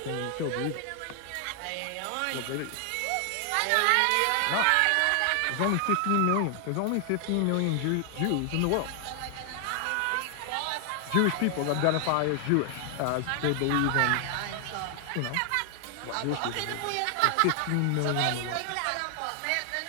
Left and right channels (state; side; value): different; both; correlation 0.00